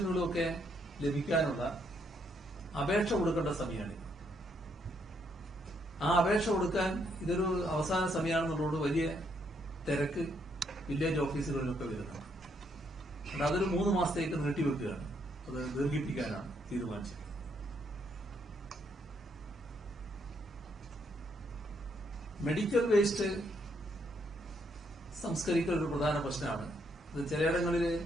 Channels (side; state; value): both; normal; correlation 0.74